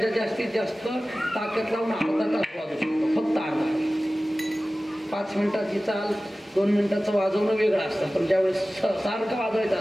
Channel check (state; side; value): normal; both; correlation 0.97